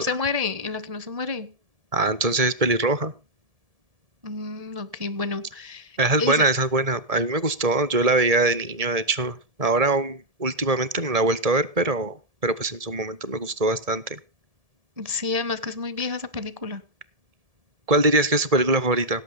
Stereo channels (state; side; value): late; left; 1.7 ms